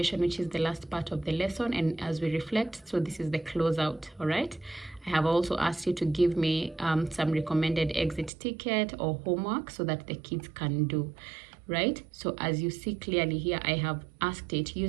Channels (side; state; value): left; drops out; at 8.3 s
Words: which is the last part of the lesson. And as we reflect, so this is the closeout, all right? I have also asked you to give me some recommended exit ticket or homework so that the kids can do, right? So as you see clearly here, I have asked it